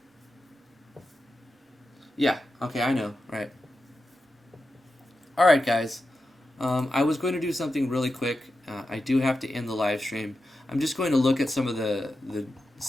Yeah, okay, I know, right. Alright, guys. I was going to do something really quick. I do have to end the live stream. I'm just going to look at some of the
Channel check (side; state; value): both; normal; correlation 0.90